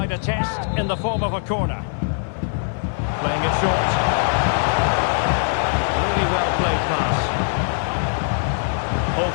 a test in the form of a corner. Playing it short. Really well played pass.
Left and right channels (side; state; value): right; silent; digital silence